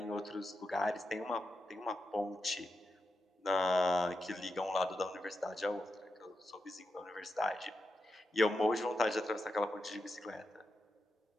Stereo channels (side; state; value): both; normal; correlation 0.87